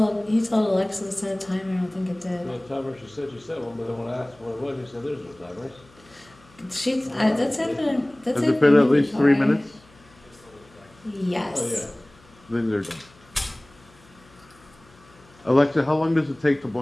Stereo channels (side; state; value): left; noise; hum, 27 dB below the sound